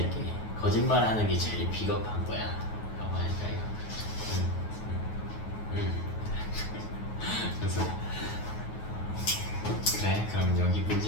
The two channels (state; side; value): late; right; 9.4 ms